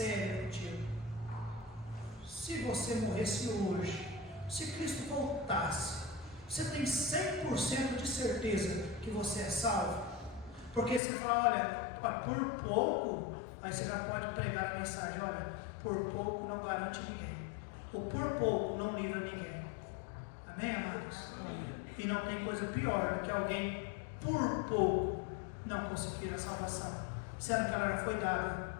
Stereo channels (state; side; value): drops out; right; at 11.0 s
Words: contigo. Se você morresse hoje, se Cristo voltasse, você tem 100% de certeza que você é salvo? Porque se falar, olha, por pouco, aí você já pode pregar a mensagem: olha, por pouco não garante ninguém, ou por pouco não livra ninguém. Amém, amados? E não tem coisa pior do que alguém por pouco não conseguir a salvação, sendo que ela já foi dada.